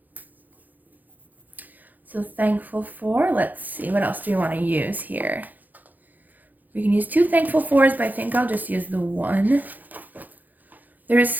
So thankful for, let's see, what else do we want to use here? We can use 2 thankful fors, but I think I'll just use the 1. There's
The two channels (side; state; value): left; late; 0.083 ms